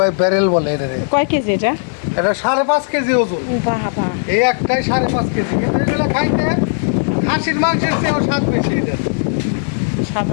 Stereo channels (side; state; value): right; silent; digital silence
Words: ব্যারেল বলে। এটারে কয় কেজি এটা? এটা 5.5 কেজি ওজন। বাবা, এই একটাই 5.5 কেজি, কিন্তু এগুলো খাইতে খাসির মাংসের চেয়েও স্বাদ বেশি। এটা স্বাদ